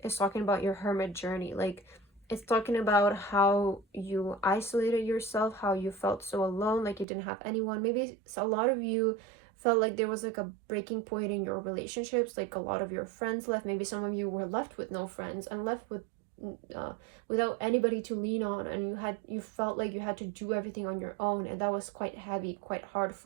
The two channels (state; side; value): drops out; left; at 7.1 s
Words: is talking about your Hermit journey. Like, it's talking about how you isolated yourself, how you felt so alone, like you didn't have anyone. Maybe a lot of you felt like there was like a breaking point in your relationships, like a lot of your friends left. Maybe some of you were left with no friends and left with without anybody to lean on, and you felt like you had to do everything on your own, and that was quite heavy, quite hard